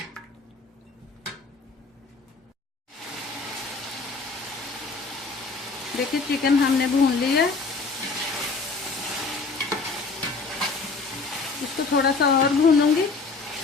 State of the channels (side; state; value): right; quieter; 4.1 dB